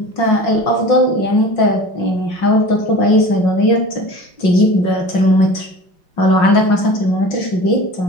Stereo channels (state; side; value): late; right; 5.6 ms